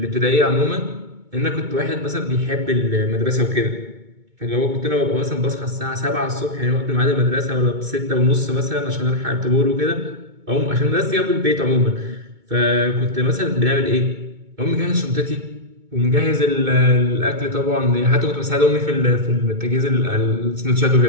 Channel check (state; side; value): late; left; 2.2 ms